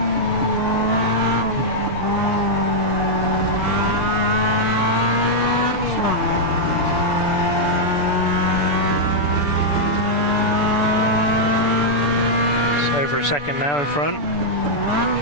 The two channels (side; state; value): right; late; 6.9 ms